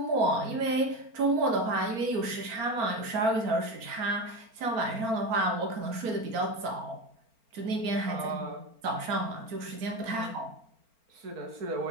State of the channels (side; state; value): left; late; 4.4 ms